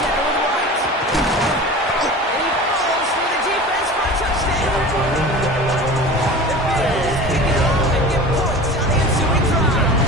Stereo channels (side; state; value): both; normal; correlation 0.36